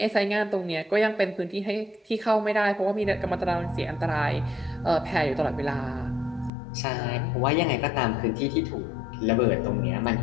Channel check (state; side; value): drops out; right; at 6.5 s